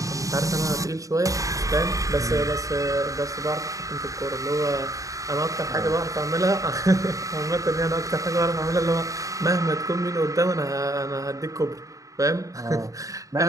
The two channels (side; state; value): left; late; 0.16 ms